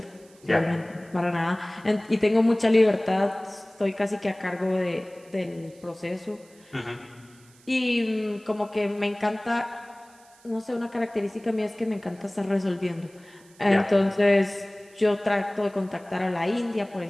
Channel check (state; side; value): noise; right; hiss, 28 dB below the sound